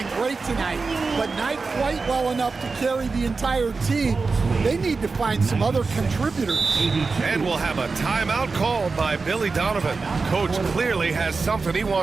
great tonight, but not quite well enough to carry the entire team. They need to find some other contributors. And we'll have a timeout called by Billy Donovan. Coach clearly has something he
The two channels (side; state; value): left; quieter; 4.3 dB